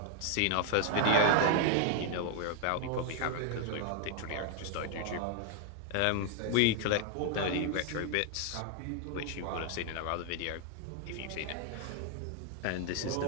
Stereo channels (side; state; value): both; different; correlation 0.00